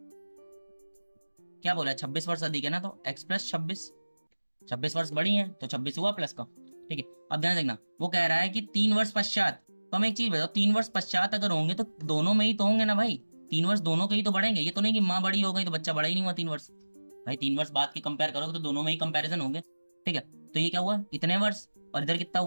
क्या बोला है, 26 वर्ष अधिक है ना, तो x प्लस 26 वर्ष बड़ी है तो 26 हुआ प्लस का, ठीक है। अब ध्यान देखना, वो कह रहा है कि 3 वर्ष पश्चात। तो हम एक चीज बताओ, 3 वर्ष पश्चात अगर होंगे तो दोनों में ही तो होंगे ना भाई। 3 वर्ष दोनों के ही तो बढ़ेंगे, ये तो नहीं कि माँ बड़ी हो गई तो बच्चा बड़ा ही नहीं हुआ 3 वर्ष। भाई 3 वर्ष बाद की कंपेयर करोगे तो दोनों में ही कंपेरिजन होंगे, ठीक है। तो ये क्या हुआ, इतने वर्ष, और इधर कितना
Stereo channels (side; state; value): both; inverted; correlation -1.00